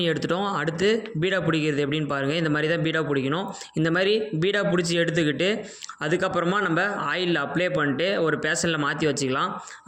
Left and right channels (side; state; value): both; identical; correlation 1.00